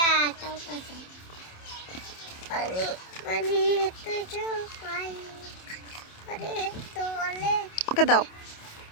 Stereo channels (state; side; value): late; right; 27 ms